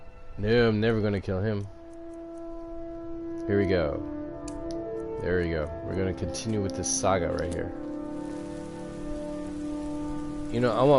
No, I'm never gonna kill him. Here we go. There we go. We're gonna continue with this saga right here. You know, I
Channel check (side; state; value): both; identical; correlation 1.00